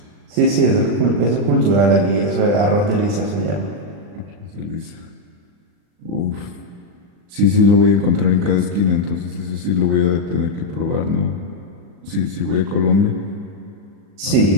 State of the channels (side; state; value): left; late; 39 ms